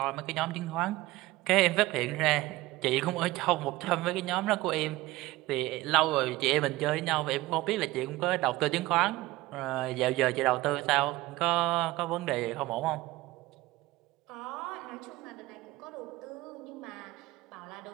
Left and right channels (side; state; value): left; quieter; 18.7 dB